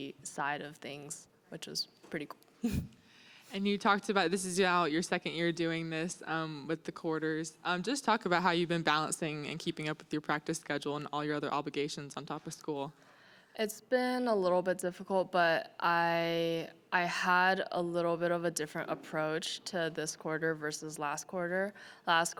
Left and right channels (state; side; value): identical; both; correlation 1.00